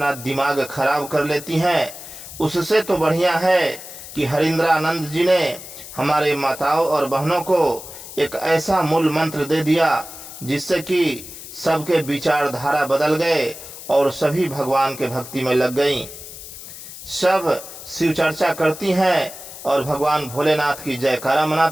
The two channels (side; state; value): left; noise; hiss, 13 dB below the sound